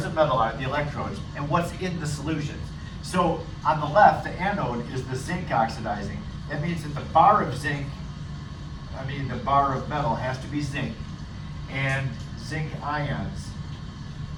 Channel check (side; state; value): both; identical; correlation 1.00